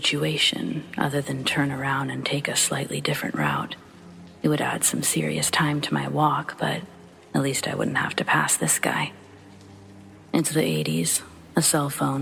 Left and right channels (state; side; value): identical; both; correlation 1.00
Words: other than turn around and take a slightly different route. It would add some serious time to my walk, but at least I wouldn't have to pass this guy. Into the 80s, a cell